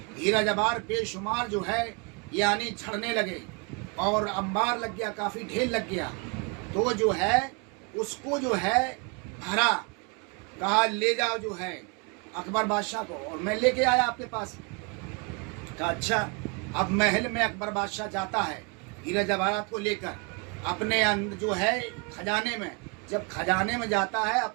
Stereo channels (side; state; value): left; quieter; 32.7 dB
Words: हीरा जवाहर बेशुमार जो है यानी झड़ने लगे और अंबार लग गया, काफ़ी ढेर लग गया। तो जो है उसको जो है भरा, कहा ले जाओ जो है अकबर बादशाह को, और मैं लेके आया आपके पास। कहा अच्छा। अब महल में अकबर बादशाह जाता है हीरा जवाहरात को लेकर अपने अंदर जो है खजाने में, जब खजाने में जाता है